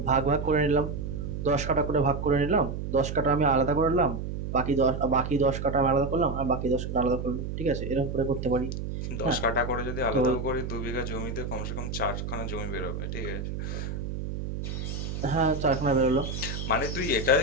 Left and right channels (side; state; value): right; noise; hum, 5 dB below the sound